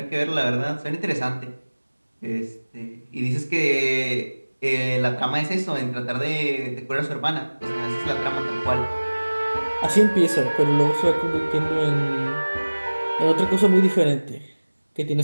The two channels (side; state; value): both; inverted; correlation -1.00